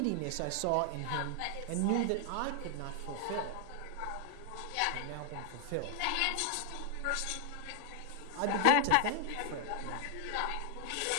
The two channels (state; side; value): different; both; correlation 0.00